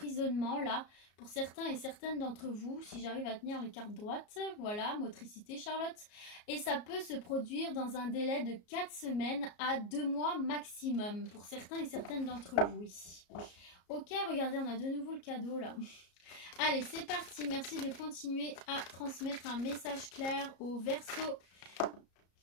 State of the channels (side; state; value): right; late; 34 ms